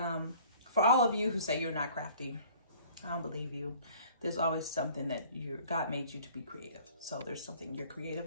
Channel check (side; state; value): both; inverted; correlation -0.52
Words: for all of you who say you're not crafty, I don't believe you. There's always something that God made you to be creative. So there's something you're